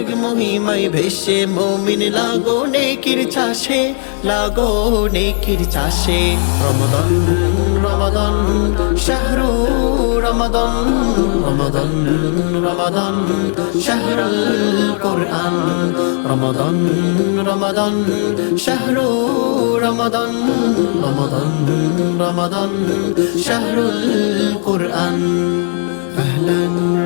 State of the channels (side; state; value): right; silent; 60 dB below the other